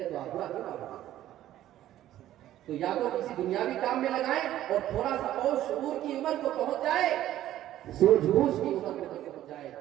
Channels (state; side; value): quieter; left; 13.1 dB